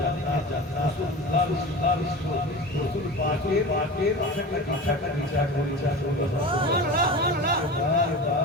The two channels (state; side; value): normal; both; correlation 0.32